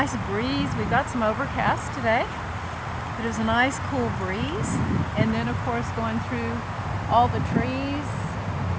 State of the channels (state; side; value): identical; both; correlation 1.00